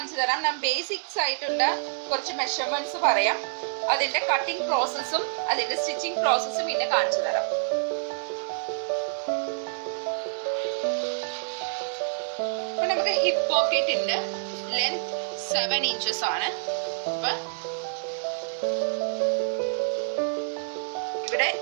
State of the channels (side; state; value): left; silent; 60 dB below the other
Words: തരാം. ഞാൻ ബേസിക്സ് ആയിട്ടുള്ള കുറച്ച് മെഷർമെന്റ്സ് പറയാം. അതിന്റെ കട്ടിംഗ് പ്രോസസ്സും അതിന്റെ സ്റ്റിച്ചിങ് പ്രോസസ്സും പിന്നെ കാണിച്ചു തരാം. അപ്പൊ നമുക്ക് ഹിപ്പ് പോക്കറ്റിന്റെ ലെങ്ത് 7 inches ആണ്. അപ്പൊ ഇവിടെ